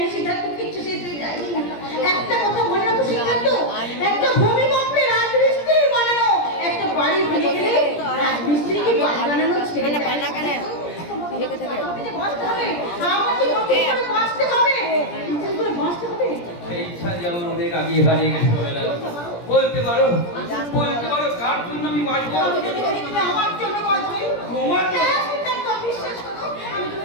সিদ্ধার্থ, কিছু শেষ হয়ে যায়নি। একটা কথা মনে রাখো সিদ্ধার্থ, একটা ভূমিকম্পে রাজমিস্ত্রি বানানো, একটা বাড়ি ভেঙে গেলে রাজমিস্ত্রিকে বাড়ি বানানো ছেড়ে দেয়। আমাকে যে বাঁচতে হবে, আমাকে নতুন করে বাঁচতে হবে, নতুন করে বাঁচতে হবে। সেই ইচ্ছা যেমন অনেক আগে হারিয়ে গেছে পামেলা। বলতে পারো কার জন্য আমি বাঁচবো? আমি যদি বলি তুমি আমার জন্য বাঁচবে, তোমার জন্য? হ্যাঁ, সিদ্ধার্থ, বিশ্বাস করো, আমি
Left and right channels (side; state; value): right; late; 17 ms